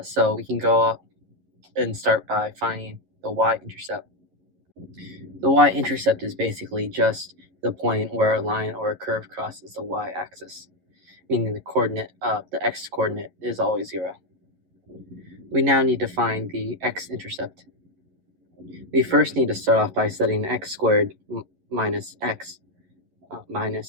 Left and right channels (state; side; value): late; left; 11 ms